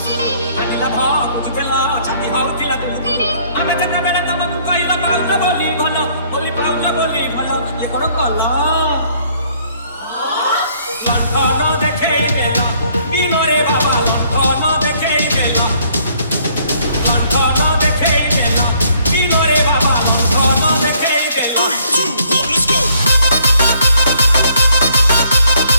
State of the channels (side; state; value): both; inverted; correlation -0.64